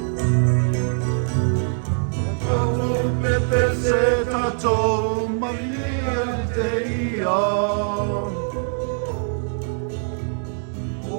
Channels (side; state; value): left; silent; 64 dB below the other